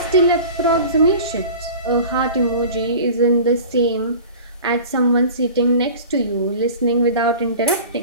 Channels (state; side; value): inverted; both; correlation -0.39